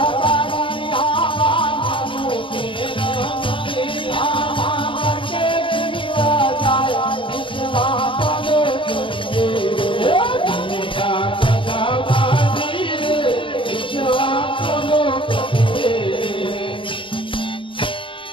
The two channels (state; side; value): late; right; 0.25 ms